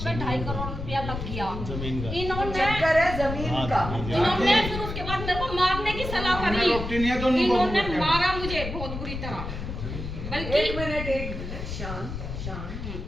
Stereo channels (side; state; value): left; noise; rumble, 6 dB below the sound